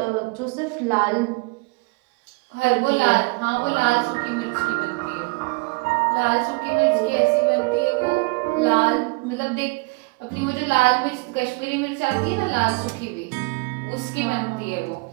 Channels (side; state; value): left; quieter; 27.5 dB